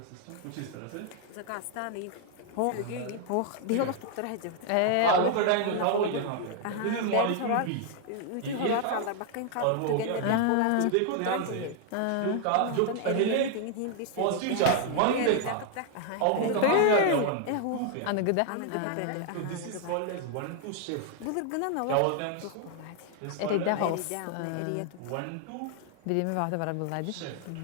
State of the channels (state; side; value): different; both; correlation 0.00